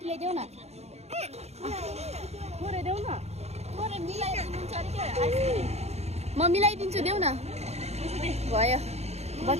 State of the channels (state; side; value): late; left; 0.31 ms